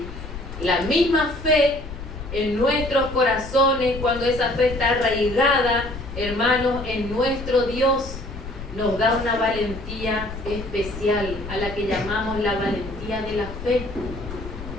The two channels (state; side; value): noise; left; rumble, 11 dB below the sound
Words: La misma fe en nuestros corazones, cuando esa fe está arraigada, hermanos, en nuestro Dios, nos da una valentía especial, a la que llamamos la valentía de la fe.